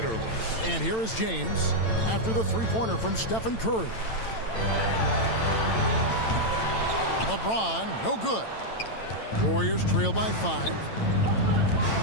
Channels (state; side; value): late; right; 9.0 ms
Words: And here is James after the three-pointer from Stephen Curry. LeBron, no good. Warriors trail by 5.